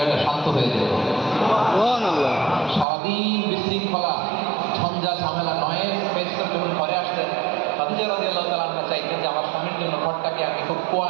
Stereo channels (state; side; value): drops out; left; at 2.9 s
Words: শান্ত হয়ে যেত। সুবহানাল্লাহ। সারাদিন বিশৃঙ্খলা, ঝঞ্ঝা, ঝামেলা, নয়েজ ফেস করে যখন ঘরে আসতেন, খাদিজা রাদিয়াল্লাহু তাআলা আনহা চাইতেন যে আমার স্বামীর জন্য ঘরটাকে আমি খুব